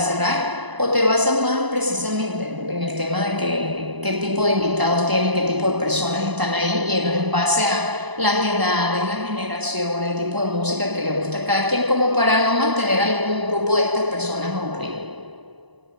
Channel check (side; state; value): left; late; 1.0 ms